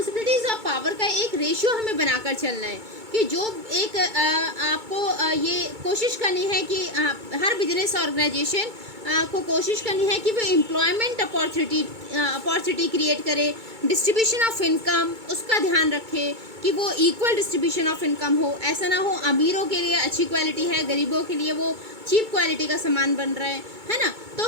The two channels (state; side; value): late; left; 2.2 ms